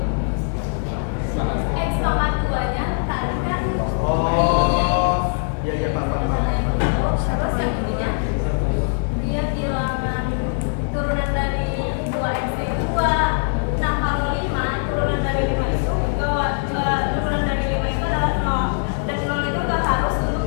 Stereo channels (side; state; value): right; silent; digital silence